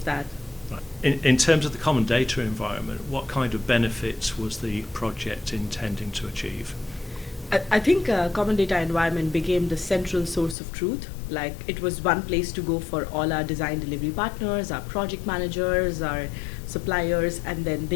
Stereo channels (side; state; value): right; drops out; at 10.6 s